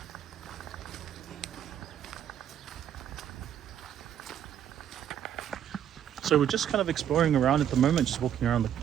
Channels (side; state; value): left; quieter; 9.8 dB